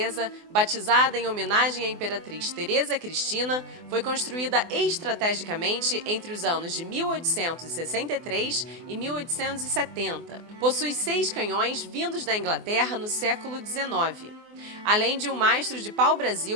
batizada em homenagem à Imperatriz Teresa Cristina, foi construída estrategicamente entre os anos de 1863 e 1870. Possui 6 canhões vindos da Inglaterra no século XIX, além de um mastro de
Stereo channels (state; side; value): late; left; 24 ms